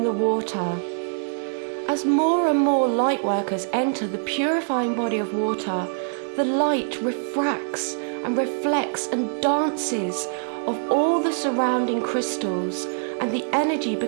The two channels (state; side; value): silent; left; digital silence